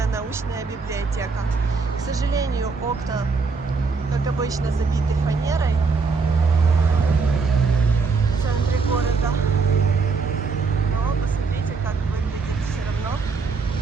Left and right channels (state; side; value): quieter; left; 4.7 dB